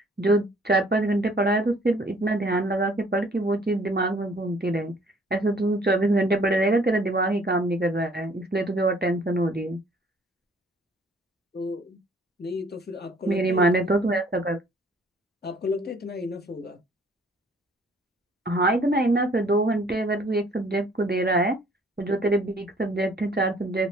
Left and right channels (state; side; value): normal; both; correlation 0.58